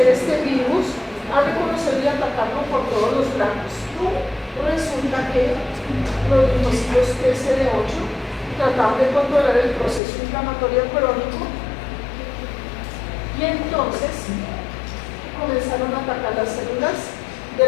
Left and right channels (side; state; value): right; drops out; at 10.0 s